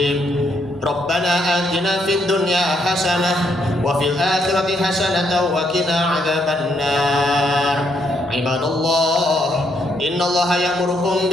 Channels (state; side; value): noise; right; hum, 28 dB below the sound